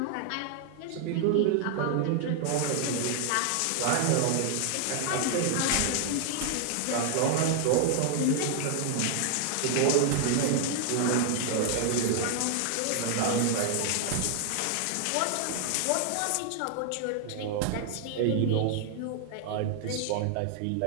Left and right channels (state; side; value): different; both; correlation 0.00